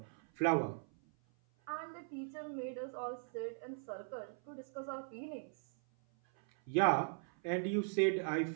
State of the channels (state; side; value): silent; left; 52 dB below the other